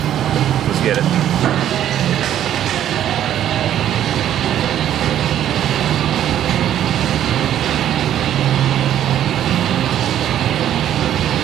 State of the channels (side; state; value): left; quieter; 11.1 dB